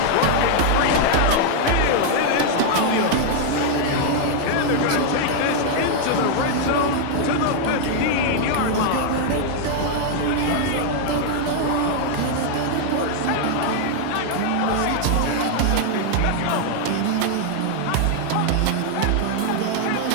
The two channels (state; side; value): different; both; correlation 0.00